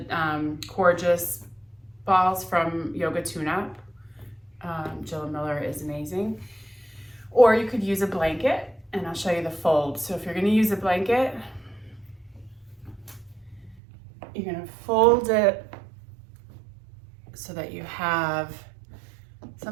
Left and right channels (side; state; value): left; drops out; at 13.8 s